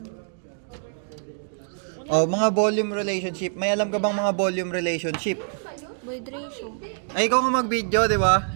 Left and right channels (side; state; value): left; silent; digital silence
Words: Oh, mga volume relationship. May alam ka bang mga volume relationship? Void ratio. Ay, ikaw nga mag-video, di ba?